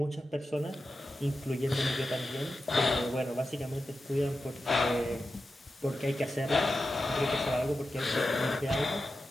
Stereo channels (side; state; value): both; normal; correlation 0.91